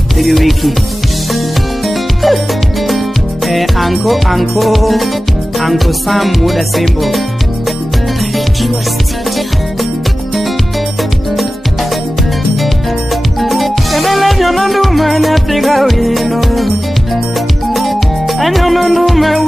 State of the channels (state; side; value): normal; both; correlation 0.96